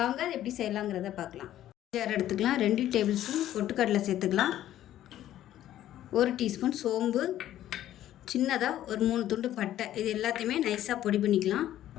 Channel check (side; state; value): right; quieter; 12.6 dB